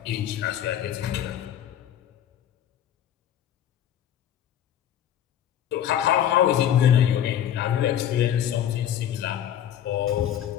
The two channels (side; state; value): right; quieter; 10.6 dB